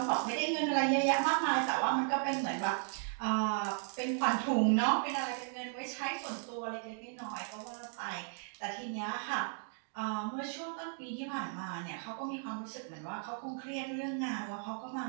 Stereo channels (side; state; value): left; silent; 54 dB below the other